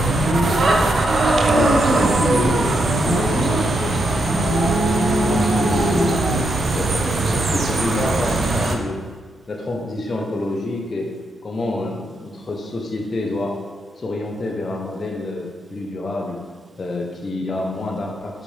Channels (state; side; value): normal; both; correlation 0.81